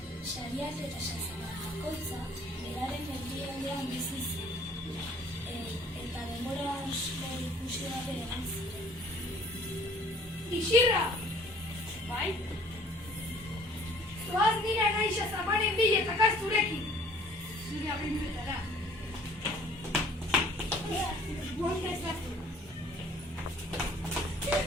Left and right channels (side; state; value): both; normal; correlation 0.54